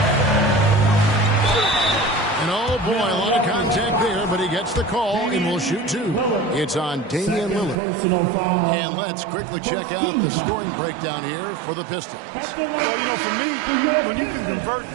And oh boy, a lot of contact there, but he gets the call and will shoot 2. It's on Damian Lillard. And let's quickly check out the scoring breakdown here for the Pistons. Well, you know, for me, when you can convert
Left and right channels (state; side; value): drops out; left; at 7.8 s